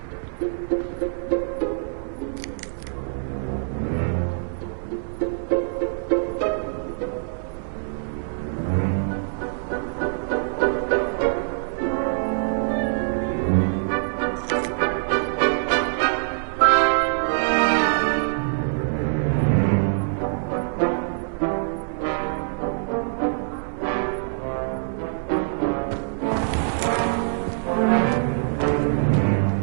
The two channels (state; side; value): silent; left; digital silence